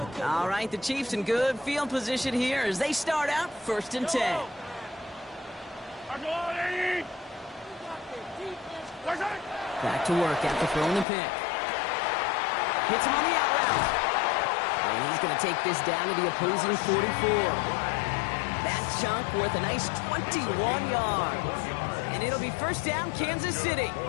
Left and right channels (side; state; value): right; drops out; at 11.1 s